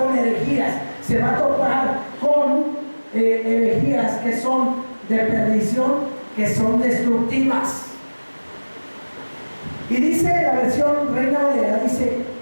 herejías, se va a topar con herejías que son de perdición, que son destructivas. Y dice la versión Reina Valera, dice,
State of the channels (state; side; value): inverted; both; correlation -1.00